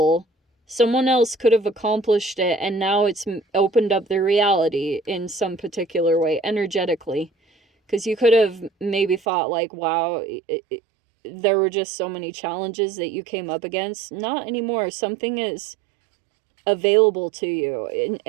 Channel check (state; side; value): drops out; left; at 9.2 s